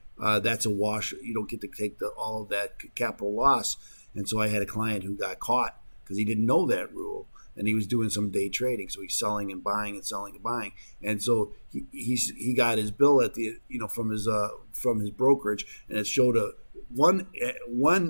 That's a wash. You don't get to take all of that capital loss. And so I had a client who got caught because he didn't know that rule, and he was doing some day trading. So he's selling and buying and selling and buying. And so he got his bill at the from his brokerage, and it showed one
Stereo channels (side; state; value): both; inverted; correlation -1.00